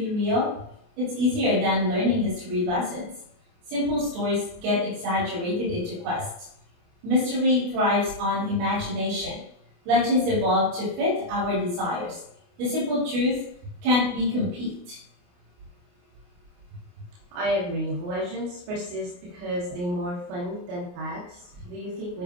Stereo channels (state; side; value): late; left; 28 ms